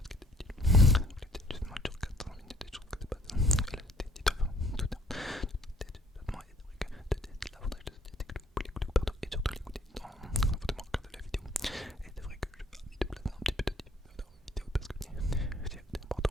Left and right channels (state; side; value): normal; both; correlation 0.60